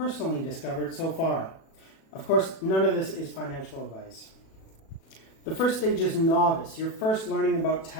discovered so far. Of course, none of this is financial advice. The first stage is novice. You're first learning about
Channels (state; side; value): late; right; 37 ms